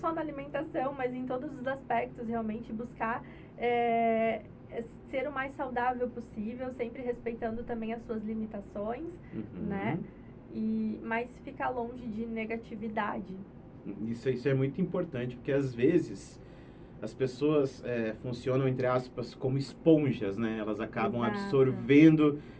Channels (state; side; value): identical; both; correlation 1.00